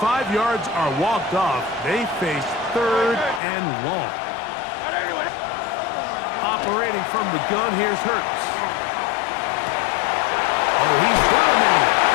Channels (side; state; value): right; drops out; at 3.4 s